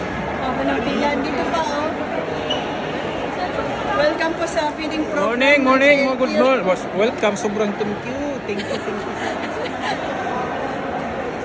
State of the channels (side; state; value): both; identical; correlation 1.00